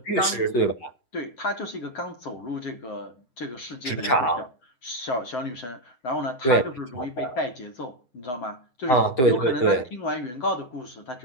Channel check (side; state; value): right; late; 7.8 ms